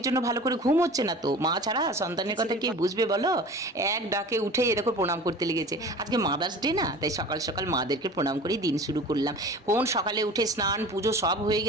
জন্য ভালো করে ঘুম হচ্ছে না তো, মা ছাড়া সন্তানের কথা কে বুঝবে বলো। এক ডাকে উঠে এ দেখো প্রণাম করতে লেগেছে। আজকে মাদার্স ডে না, তাই সকাল সকাল মাদেরকে প্রণাম করে দিন শুরু করলাম। কোন সকালে উঠে স্নান পুজো সব হয়ে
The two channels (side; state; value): both; normal; correlation 0.39